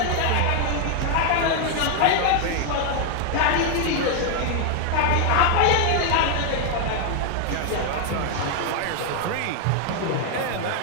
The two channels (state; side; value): different; both; correlation 0.00